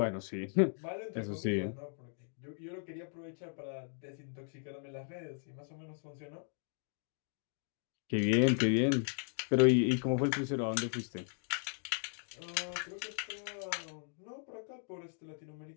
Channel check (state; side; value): silent; right; 53 dB below the other